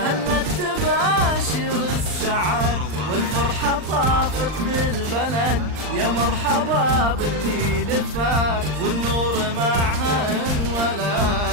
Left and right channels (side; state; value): left; late; 39 ms